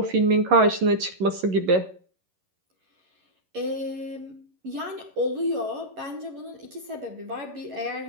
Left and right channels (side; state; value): left; late; 11 ms